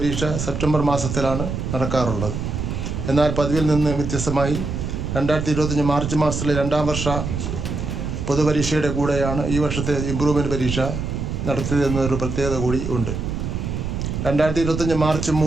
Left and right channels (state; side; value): noise; right; rumble, 4 dB below the sound